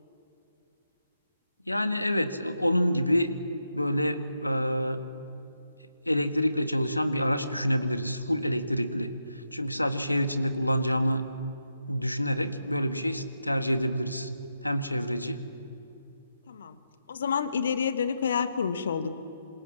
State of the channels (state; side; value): inverted; both; correlation -0.85